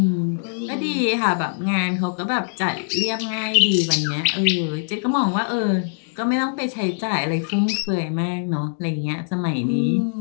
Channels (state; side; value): silent; right; digital silence